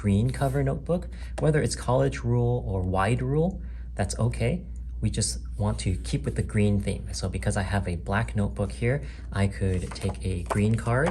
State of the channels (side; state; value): both; identical; correlation 1.00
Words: cover notebook, whether it's college rule or wide rule, that's okay. We just want to keep with the green theme. So because I have a black notebook here, I could take a green